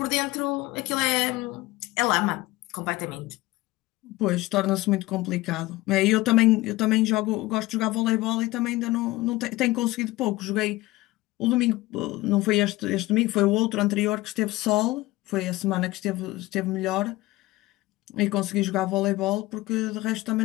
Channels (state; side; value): quieter; right; 19.3 dB